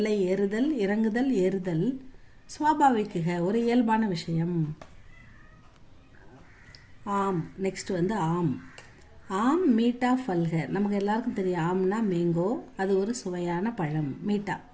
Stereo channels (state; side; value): identical; both; correlation 1.00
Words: ஏறுதல் இறங்குதல் ஏறுதல், ஸ்வாபாவிக்குக ஒரு இயல்பான விஷயம். ஆம். நெக்ஸ்ட் வந்து ஆம். ஆம் மீட்டா ஃபல்க, நமக்கு எல்லாருக்கும் தெரியும் ஆம்னா மேங்கோ, அது ஒரு சுவையான பழம். மீட்டா